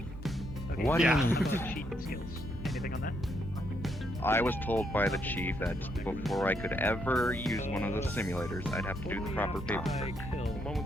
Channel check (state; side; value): normal; both; correlation 0.75